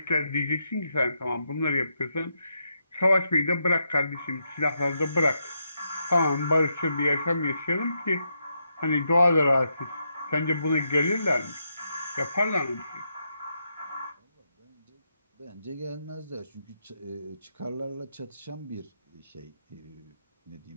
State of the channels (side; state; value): both; inverted; correlation -0.81